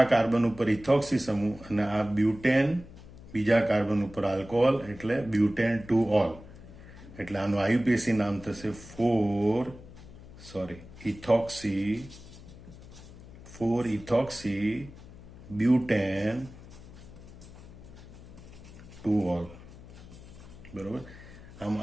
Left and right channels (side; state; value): left; noise; hum, 17 dB below the sound